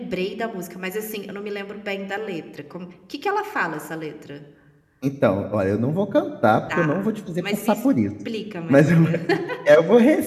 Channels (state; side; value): identical; both; correlation 1.00